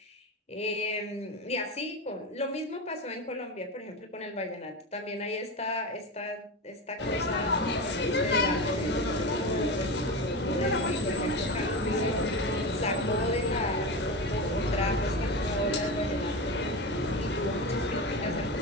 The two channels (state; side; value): normal; both; correlation 0.22